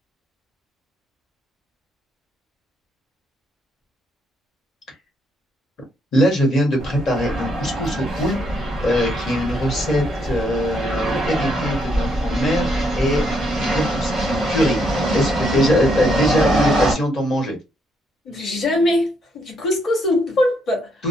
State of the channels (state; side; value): normal; both; correlation 0.74